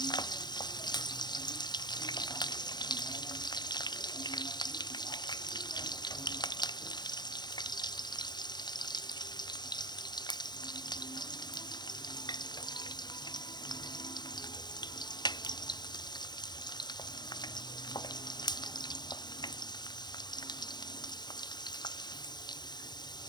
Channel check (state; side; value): late; right; 0.21 ms